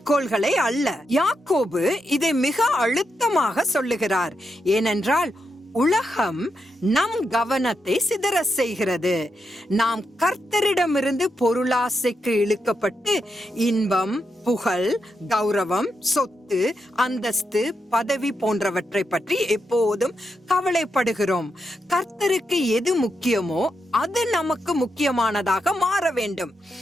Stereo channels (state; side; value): normal; both; correlation 0.84